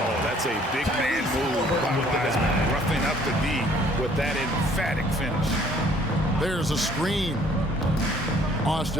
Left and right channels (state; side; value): normal; both; correlation 0.59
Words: that's a big man move by Wiseman. Roughing up the D with that emphatic finish. There's a screen.